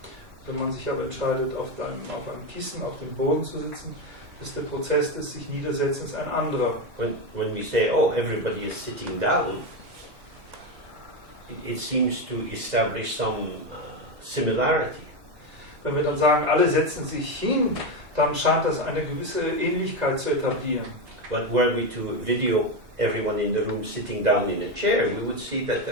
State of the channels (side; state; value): left; late; 2.0 ms